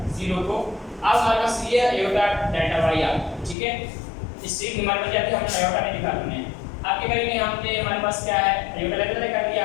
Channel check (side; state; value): right; drops out; at 3.6 s